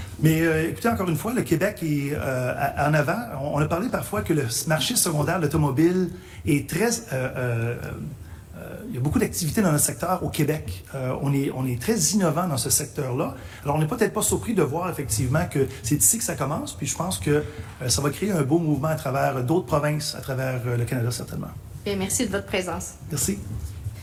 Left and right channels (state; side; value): identical; both; correlation 1.00